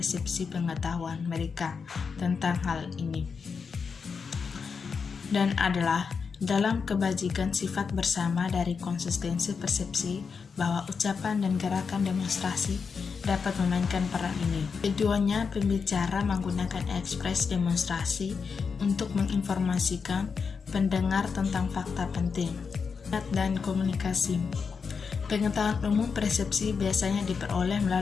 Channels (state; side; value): quieter; right; 5.6 dB